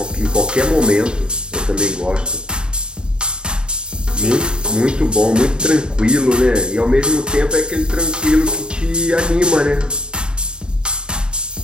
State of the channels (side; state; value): left; late; 0.049 ms